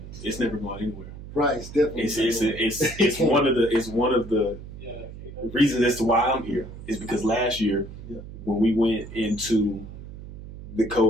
It's never going anywhere. Right. It's definitely. It's one of the reasons as to why I'm here is because last year when we went into the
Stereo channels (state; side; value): noise; right; hum, 13 dB below the sound